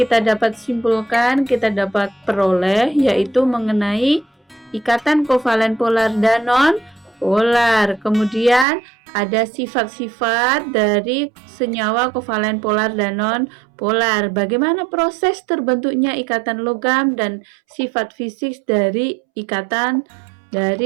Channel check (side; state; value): left; drops out; at 8.7 s